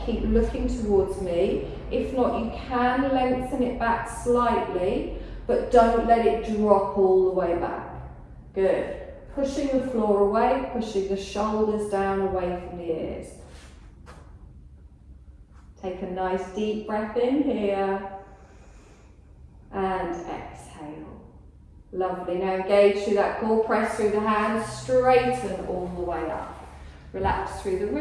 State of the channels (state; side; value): identical; both; correlation 1.00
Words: keep looking towards me. If not, you can lengthen it back slightly, but don't let it drop all the way back. Good. Pushing the floor away, pushing the shoulders down away from the ears. Take a nice deep breath in here and exhale. Lovely. Now engage through that core, press through the hands, straighten all the way up. Relax through the